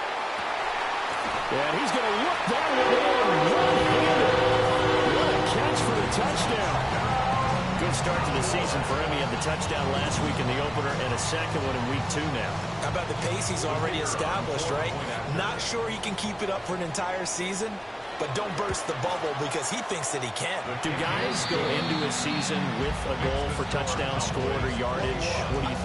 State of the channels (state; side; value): identical; both; correlation 1.00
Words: And he's going to look that way one-handed. What a catch for the touchdown. Good start to the season for him. He had the touchdown last week in the opener and a second one in week 2 now. How about the pace he's already established, right? Not sure he can keep it up for an entire season, but don't burst the bubble because he thinks that he can. Do guys go into a season with a goal for touchdown scored or yardage? What do you